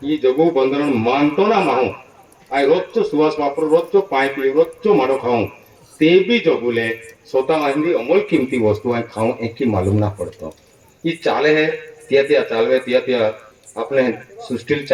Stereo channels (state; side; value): identical; both; correlation 1.00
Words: ही जगू बंधन मानतो ना माहू आय रोजचो सुवास वापरू रोजचो पाय पिऊ रोजचो माडो खाऊं ते भी जगूले स्वतः माहिती अमोल किमती वस्तु आय खाऊं एक की मालूम ना पड़तो ये चाले है त्या चालवे त्या अपने सृष्टि